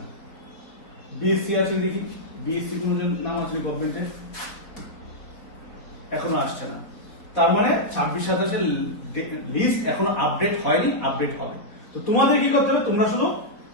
বিএসসি আছে দেখি, বিএসসি কোনো নাম আছে গভর্নমেন্টে, এখনো আসছে না। তার মানে 26-27 লিস্ট এখনো আপডেট হয়নি, আপডেট হবে। তো তোমাদের কি করতে হবে,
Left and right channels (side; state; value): right; late; 4.2 ms